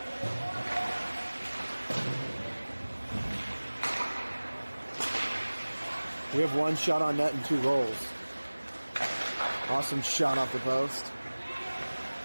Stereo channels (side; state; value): both; inverted; correlation -1.00